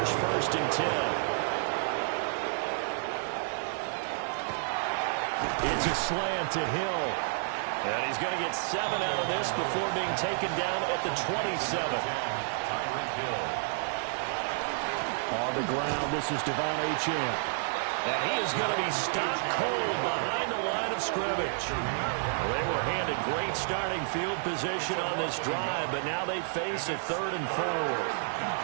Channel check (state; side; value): silent; left; digital silence